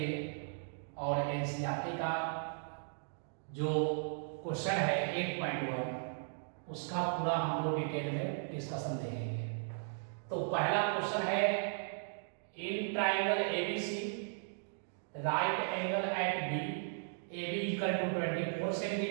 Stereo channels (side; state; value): left; silent; digital silence